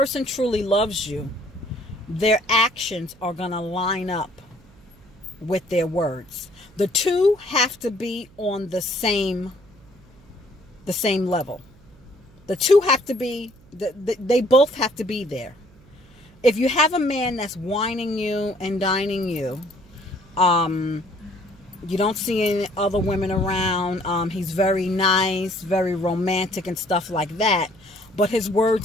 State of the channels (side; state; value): right; noise; hum, 26 dB below the sound